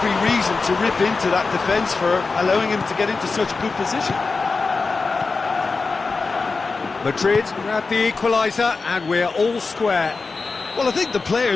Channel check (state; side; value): quieter; right; 4.2 dB